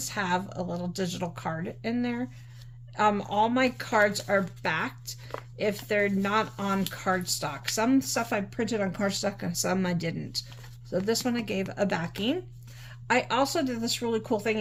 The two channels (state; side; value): identical; both; correlation 1.00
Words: have a little digital card in there. All my cards are backed if they're not on cardstock. Some stuff I printed on cardstock and some I didn't. So this one I gave a backing. I also did this really cool thing,